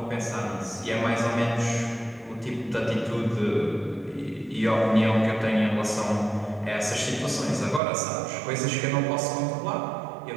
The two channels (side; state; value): left; drops out; at 7.8 s